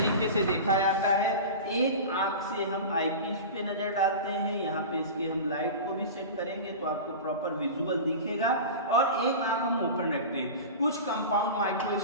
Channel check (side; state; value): both; inverted; correlation -0.30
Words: से देखा जाता है, एक आंख से हम आईपीस पे नजर डालते हैं, यहाँ पे इसके हम लाइट को भी सेट करेंगे तो आपको प्रॉपर विजुअल दिखेगा, और एक आंख हम ओपन रखते हैं। कुछ कंपाउंड